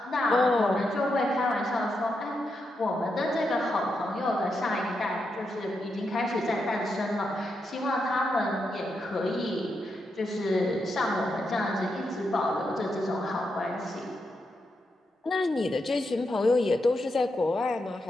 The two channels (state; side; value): normal; both; correlation 0.84